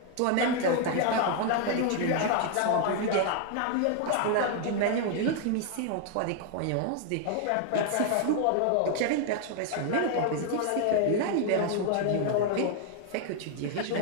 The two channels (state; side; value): different; both; correlation 0.00